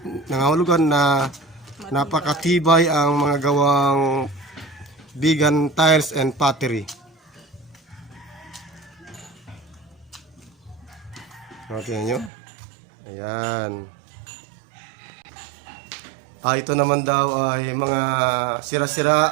Nangahulugan na napakatibay ang mga gawang Bigan tiles and pottery. Tingnan nyo. Ayan. Ito naman daw ay mga sira-sira,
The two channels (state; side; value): drops out; left; at 12.3 s